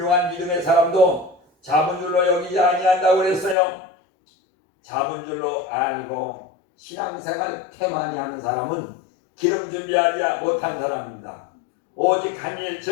믿음의 사람도 잡은 줄로 여기지 아니한다고 그랬어요. 잡은 줄로 알고 신앙생활 태만히 하는 사람은 기름 준비하지 못한 사람입니다. 오직 한 일,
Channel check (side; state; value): right; drops out; at 3.6 s